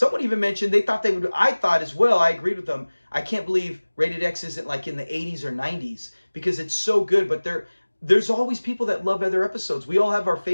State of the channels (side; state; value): both; inverted; correlation -1.00